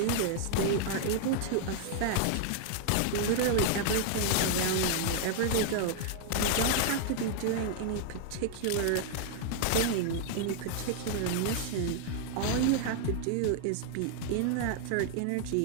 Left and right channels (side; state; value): both; different; correlation 0.00